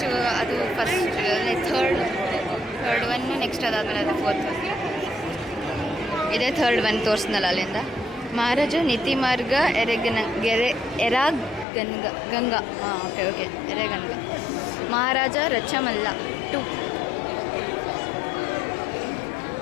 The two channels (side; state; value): right; drops out; at 11.7 s